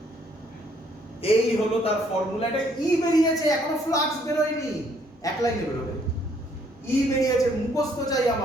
এই হলো তার ফর্মুলা। এটা ই বেরিয়েছে, এখনো ফ্লাক্স বেরোয়নি, এক লাইনে বেরোবে। ই বেরিয়েছে, মুখস্থ চাই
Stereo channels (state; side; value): normal; both; correlation 0.66